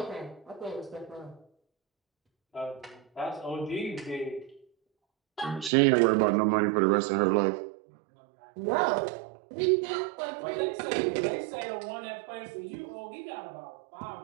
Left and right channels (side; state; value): left; drops out; at 5.7 s